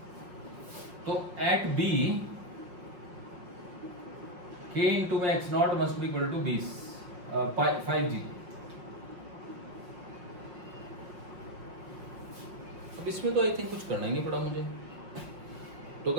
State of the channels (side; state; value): left; late; 5.6 ms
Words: तो एट B K इंटू में x0 must be equal to 5G। अब इसमें तो आई थिंक कुछ करना ही नहीं पड़ा मुझे। तो